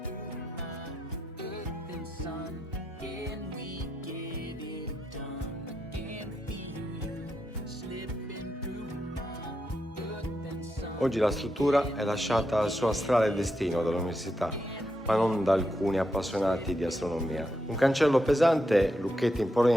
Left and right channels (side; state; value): both; normal; correlation 0.83